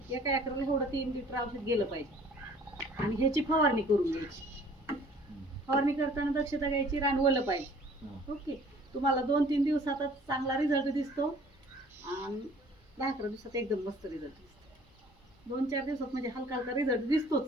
एका एकराला एवढं 3 लिटर औषध गेलं पाहिजे. आणि ह्याची फवारणी करून घ्यायची. फवारणी करताना दक्षता घ्यायची, रान ओलं पाहिजे. ओके, तुम्हाला 2-3 दिवसातच चांगला रिझल्ट दिसतो आणि 10-11 दिवसात एकदम मस्त रिझल्ट दिसतो. 2-4 दिवसात म्हणजे हलका हलका रिझल्ट दिसतोच.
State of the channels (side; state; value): both; normal; correlation 0.53